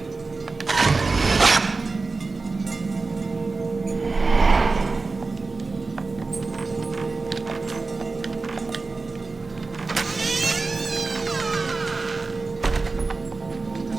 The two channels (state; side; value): quieter; left; 3.8 dB